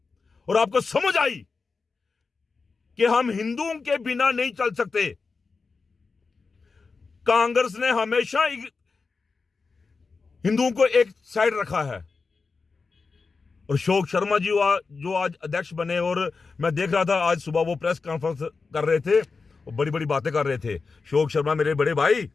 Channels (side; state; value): right; quieter; 4.5 dB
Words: और आपको समझ आई कि हम हिंदुओं के बिना नहीं चल सकते। कांग्रेस ने हमेशा हिंदुओं को एक साइड रखा है। और अशोक शर्मा जी जो आज अध्यक्ष बने, और मैं देख रहा था आज सुबह वो प्रेस कॉन्फ्रेंस कर रहे थे और बड़ी बड़ी बातें कर रहे थे। अशोक शर्मा मेरे बड़े भाई,